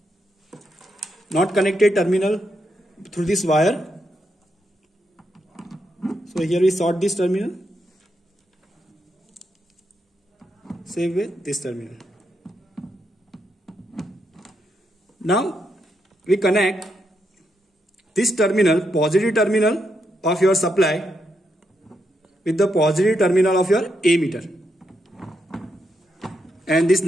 not connected terminal through this wire. So here we sort this terminal. Same way this terminal. Now we connect this terminal, positive terminal of your supply with the positive terminal of your ammeter. And this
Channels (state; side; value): normal; both; correlation 0.81